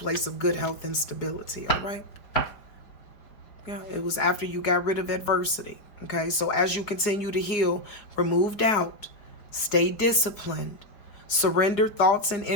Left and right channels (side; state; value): right; late; 4.6 ms